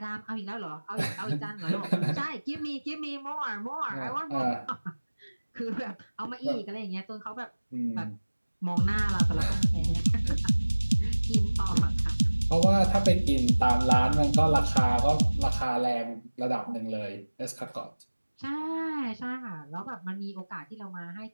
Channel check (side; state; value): both; inverted; correlation -1.00